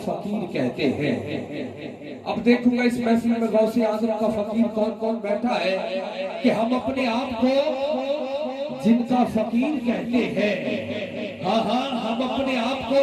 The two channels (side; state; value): both; identical; correlation 1.00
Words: कहते हैं। अब देखूंगा इस महफिल में गौसे आज़म का फकीर कौन कौन बैठा है कि हम अपने आप को जिनका फकीर कहते हैं। हाँ हाँ, हम अपने आप को,